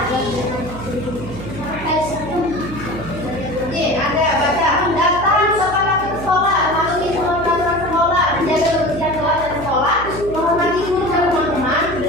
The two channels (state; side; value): noise; right; hum, 12 dB below the sound